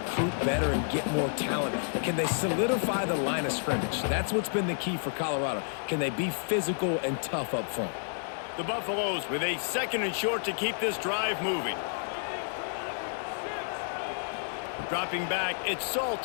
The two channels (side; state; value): right; silent; digital silence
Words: better and get more talent. Can they solidify the line of scrimmage? That's what's been the key for Colorado. Can they be physical and tough up front? The Buffaloes with a 2nd and short to keep this drive moving. Dropping back, it's